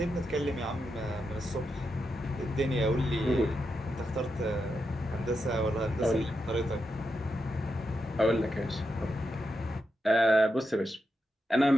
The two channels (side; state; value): both; normal; correlation 0.86